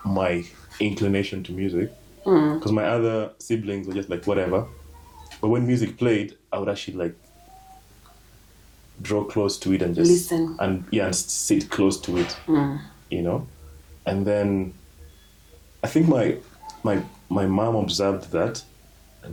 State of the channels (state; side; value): identical; both; correlation 1.00